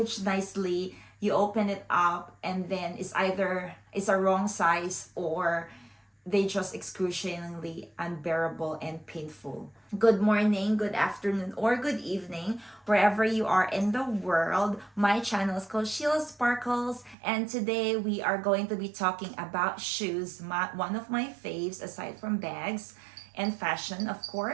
nicely, you open it up, and then it's a wrong size, or they just excruciatingly unbearable and painful. Good morning, good afternoon, or good evening, wherever you are in the world. My channel is called Sheila Sparkles, and today we are going to be talking about shoes, one of my faves aside from bags and fashion, of course.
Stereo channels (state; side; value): drops out; left; at 17.2 s